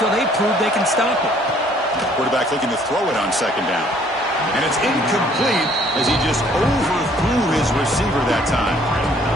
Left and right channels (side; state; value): both; normal; correlation 0.60